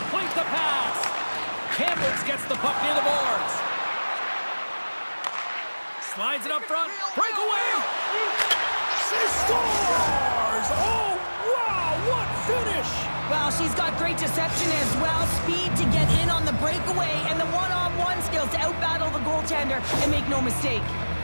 the pass. Kamloops gets the puck near the boards. Slides it up front. Breakaway. She scores. Oh, wow. What finish. Well, she's got great deception as well, speed to get in on the breakaway, and the one-on-one skills to outbattle the goaltender and make no mistake.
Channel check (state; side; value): inverted; both; correlation -1.00